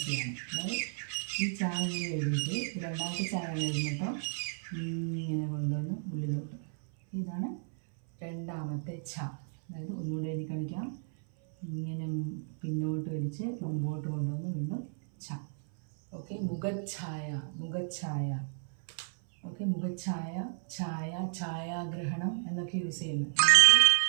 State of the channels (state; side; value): silent; left; 56 dB below the other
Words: അതായത് ഈ ച ഇങ്ങനെ എഴുതിയിട്ട് രണ്ടാമത്തെ ചായ എഴുതിട്ടോ ഇങ്ങനെ കൊണ്ടുവന്ന് ഉള്ളിലോട്ട്, ഇതാണ് രണ്ടാമത്തെ ച. അതായത് ഒന്നുകൂടെ എഴുതി കാണിക്കാം. ഇങ്ങനെ പിന്നോട്ട് വലിച്ച് മുമ്പോട്ട് കൊണ്ടുവന്ന് വീണ്ടും ച. ഓക്കെ, മുഖഛായ, മുഖഛായ. ഓക്കെ, മുഖഛായ, ഛായ, ഛായാഗ്രഹണം എന്നൊക്കെ യൂസ് ചെയ്യുന്നു. നമുക്ക്